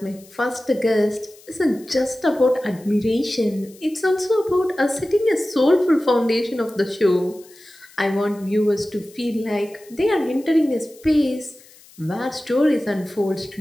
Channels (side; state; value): left; noise; hiss, 25 dB below the sound